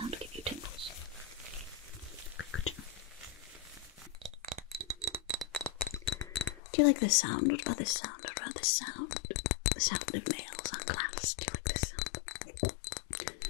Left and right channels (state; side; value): drops out; right; at 6.6 s